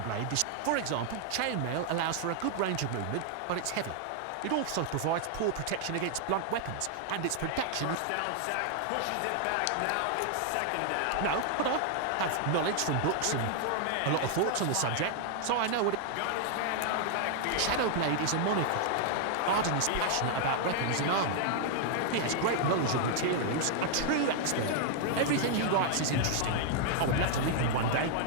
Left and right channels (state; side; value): different; both; correlation 0.00